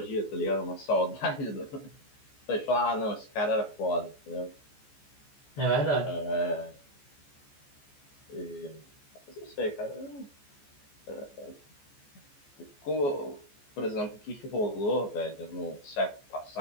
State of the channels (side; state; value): right; late; 14 ms